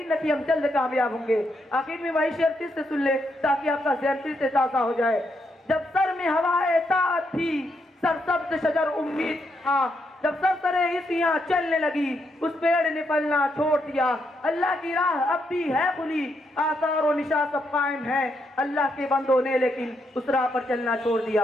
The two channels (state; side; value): normal; both; correlation 0.79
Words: ہے کہ ہم جلد کامیاب ہوں گے. آخر میں وہی شعر پھر سے سن لے تاکہ آپ کا ذہن پھر سے تازہ ہو جائے. جب سر میں ہوائے طاعت تھی، سرسبز شجر امید تھا، جب سرسرے حصیاں چلنے لگی، اس پیڑ نے پھلنا چھوڑ دیا. اللہ کی راہ اب بھی ہے کھلی، آثار و نشاں سب قائم ہیں. اللہ کے بندوں نے لیکن اس راہ پر چلنا چھوڑ